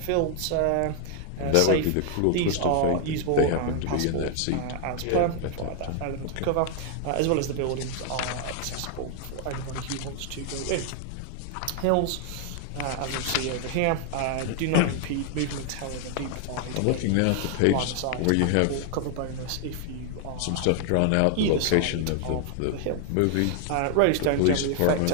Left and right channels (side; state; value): both; different; correlation 0.00